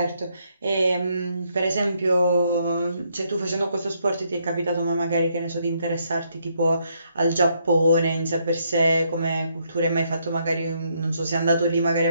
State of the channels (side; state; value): both; inverted; correlation -0.74